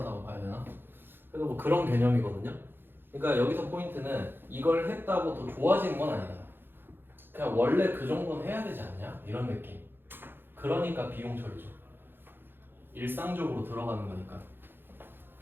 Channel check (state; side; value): late; left; 0.10 ms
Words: 봐야 되나? 그래서 뭐 그런 개념이거든요. 그러니까 여기서 포인트는 이걸 했다고 더 좋아지는 건 아니다. 그냥 원래 그 정도는 해야 되지 않냐? 이런 느낌. 그러니까 비용 처리죠. 일상적으로 들어가는 거니까.